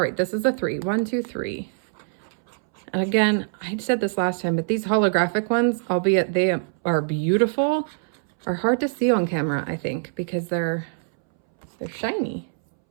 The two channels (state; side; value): silent; left; 63 dB below the other